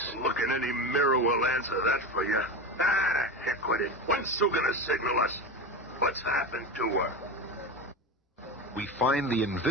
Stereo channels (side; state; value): both; normal; correlation 0.23